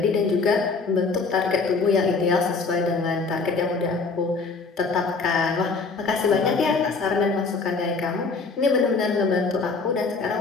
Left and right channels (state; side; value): quieter; right; 4.4 dB